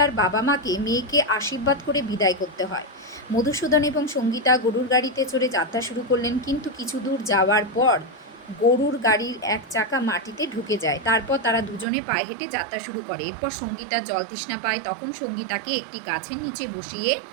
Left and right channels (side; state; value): left; drops out; at 11.9 s